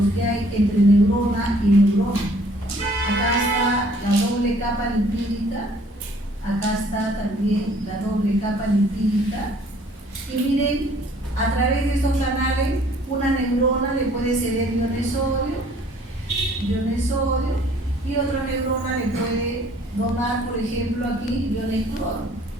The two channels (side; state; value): both; normal; correlation 0.58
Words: que hay entre neurona y neurona. Acá está la doble capa lipídica, acá está también la doble capa lipídica. Y miren, a través de estos canales, una neurona le puede ceder iones sodio, y otra neurona le puede donar, por ejemplo, aquí iones cloro.